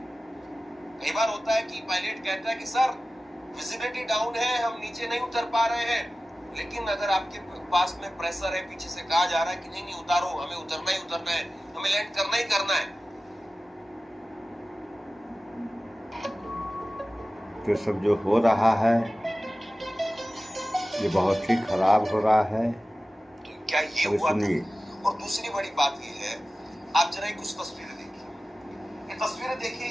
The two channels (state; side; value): normal; both; correlation 0.96